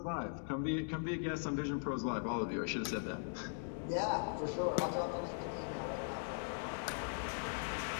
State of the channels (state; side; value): silent; right; digital silence